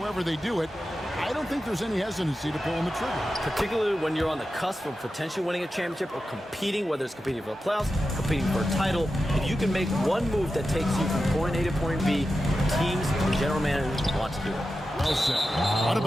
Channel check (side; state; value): both; normal; correlation 0.91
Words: they do it, I don't think there's any hesitancy to pulling the trigger. Particularly when you're on the cusp of potentially winning a championship or competing, whether it's competing for the playoffs, competing for a title. If you can make one move that takes you from point A to point B, teams and general managers want to do it. Well said. Out of